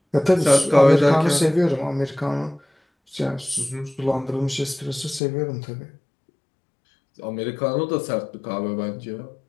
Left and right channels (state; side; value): drops out; right; at 5.2 s